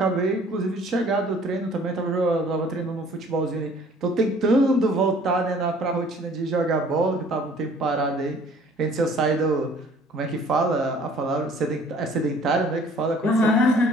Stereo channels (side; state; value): both; normal; correlation 0.54